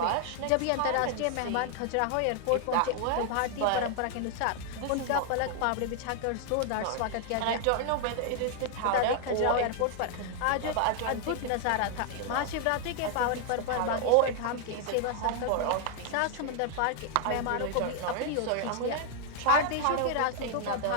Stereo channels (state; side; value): different; both; correlation 0.00